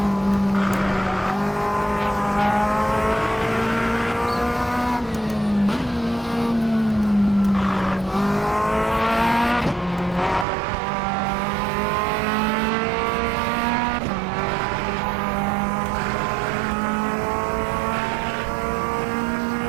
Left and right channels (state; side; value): drops out; left; at 10.5 s